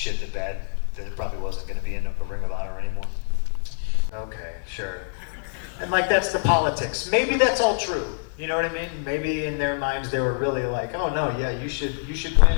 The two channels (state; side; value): silent; right; digital silence